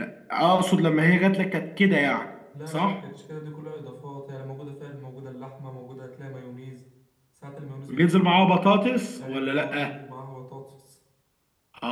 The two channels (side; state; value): both; identical; correlation 1.00